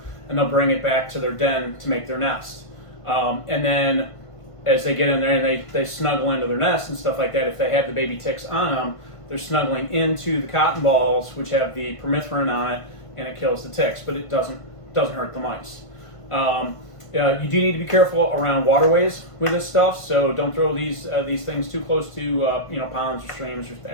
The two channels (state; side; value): late; right; 1.5 ms